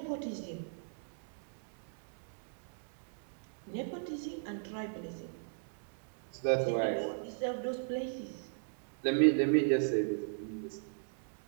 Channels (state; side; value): silent; left; digital silence